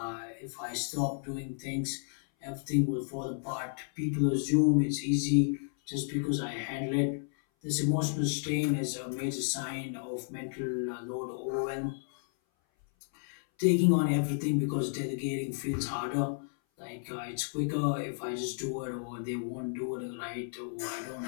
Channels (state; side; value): silent; right; 56 dB below the other